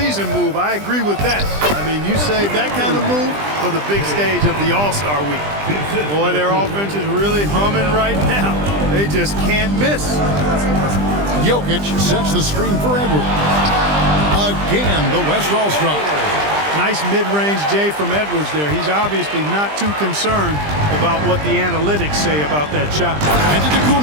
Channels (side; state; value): left; late; 20 ms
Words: move. I agree with that. I mean, you save that kind of move for the big stage of the All-Star Week. Boy, their offense is really humming right now. They just can't miss. Jokic sets the screen for Edwards. Again, the West All-Star. Nice mid-range J from Edwards there. He's obviously not too concerned about what the analytics say about that shot. And to